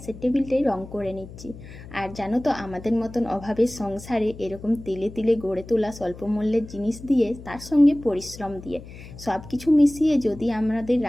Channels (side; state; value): left; noise; hum, 16 dB below the sound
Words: টেবিলটাই রং করে নিচ্ছি। আর জানো তো, আমাদের মতন অভাবের সংসারে এরকম তিলে তিলে গড়ে তোলা স্বল্প মূল্যের জিনিস দিয়ে, তার সঙ্গে পরিশ্রম দিয়ে, সব কিছু মিশিয়ে যদি আমাদের